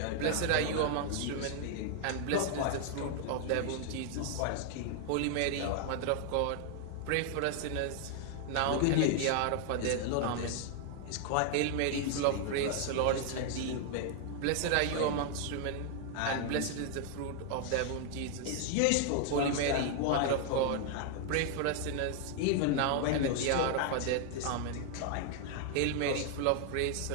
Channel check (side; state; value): both; different; correlation 0.00